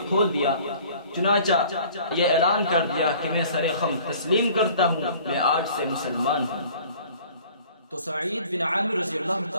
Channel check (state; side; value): inverted; both; correlation -0.50